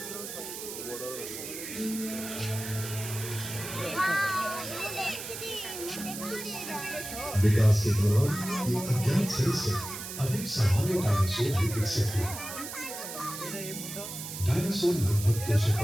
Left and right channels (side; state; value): right; noise; hiss, 8 dB below the sound